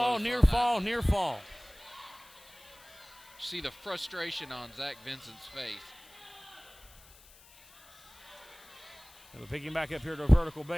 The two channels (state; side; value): noise; left; hiss, 23 dB below the sound